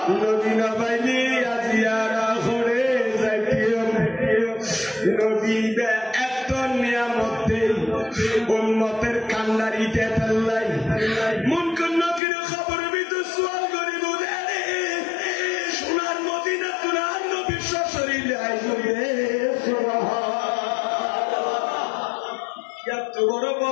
নবী না পাইলে আজিয়ারা করে যাইতিম নবী এত নিয়ামত দেই উম্মতের কান্নারি দেতাল্লাই মন কোন নবীর খবর ভিতর সওয়াল করিব রে সোনার মদিনা তুরার নবী শরীরে আইবে এত বড়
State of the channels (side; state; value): right; drops out; at 12.2 s